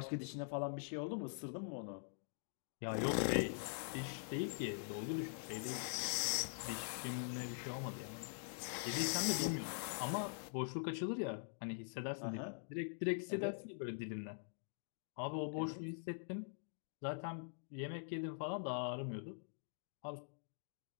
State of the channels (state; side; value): silent; right; digital silence